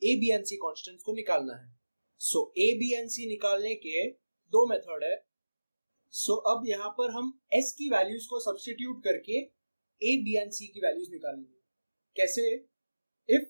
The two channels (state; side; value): inverted; both; correlation -1.00